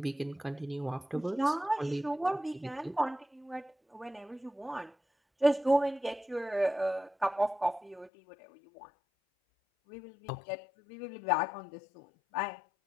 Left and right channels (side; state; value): right; drops out; at 8.1 s